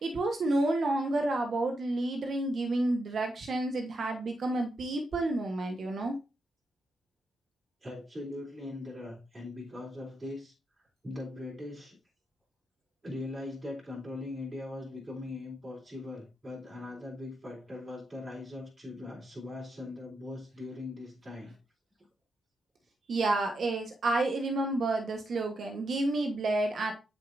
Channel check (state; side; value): normal; both; correlation 0.83